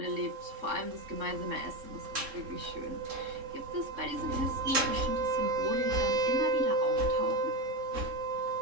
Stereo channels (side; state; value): left; late; 3.7 ms